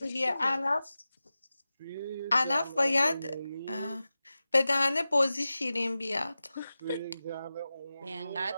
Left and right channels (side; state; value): both; inverted; correlation -0.94